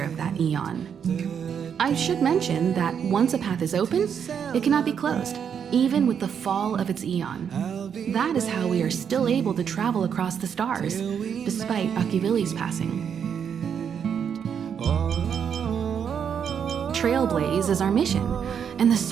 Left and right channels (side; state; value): left; quieter; 7.7 dB